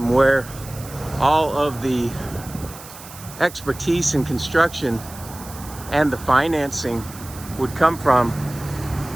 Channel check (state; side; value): noise; right; hiss, 16 dB below the sound